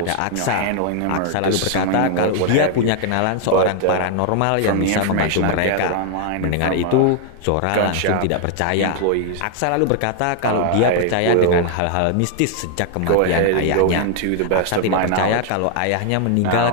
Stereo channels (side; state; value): both; different; correlation 0.00